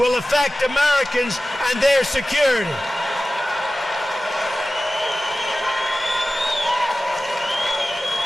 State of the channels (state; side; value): normal; both; correlation 0.96